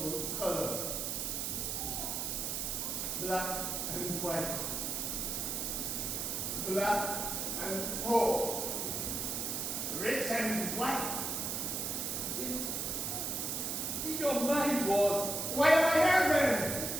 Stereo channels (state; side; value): noise; right; hiss, 1 dB below the sound